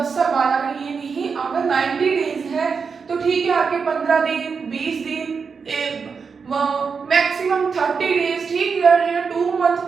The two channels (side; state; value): left; quieter; 5.6 dB